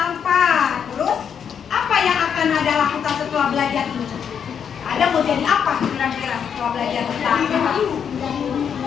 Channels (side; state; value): right; quieter; 7.7 dB